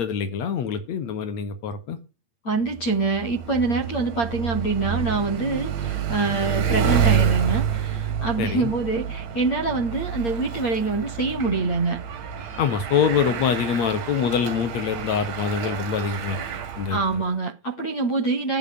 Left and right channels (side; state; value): right; late; 8.6 ms